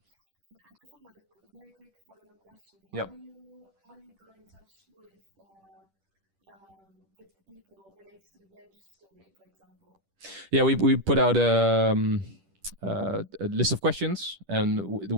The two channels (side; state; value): left; late; 10 ms